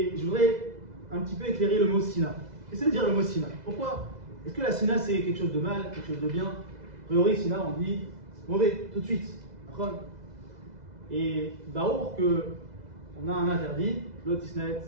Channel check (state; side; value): late; left; 2.0 ms